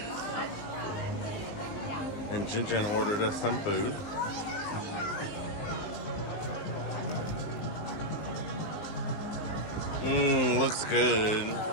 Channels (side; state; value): right; late; 19 ms